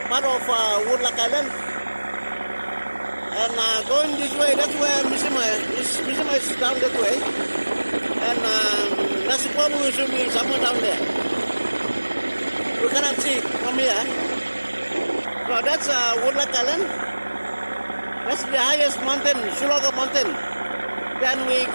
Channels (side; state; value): both; inverted; correlation -1.00